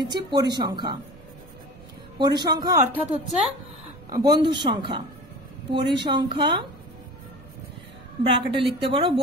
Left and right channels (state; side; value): noise; right; rumble, 21 dB below the sound